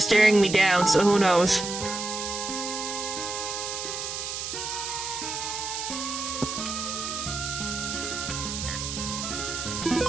staring me down, so who knows?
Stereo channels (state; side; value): noise; right; hiss, 5 dB below the sound